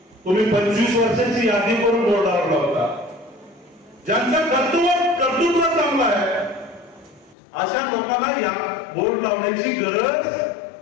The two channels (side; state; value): right; drops out; at 7.4 s